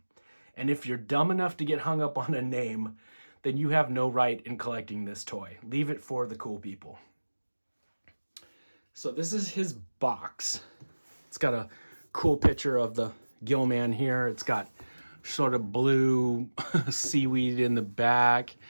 And if you're dumb enough to get hung up on a name, then you have no right in collecting this toy. Leave it for the cool people. So this is his box. It's got a cool picture of the Gillman here. It's got sort of blue seaweed in the back.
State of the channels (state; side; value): inverted; both; correlation -1.00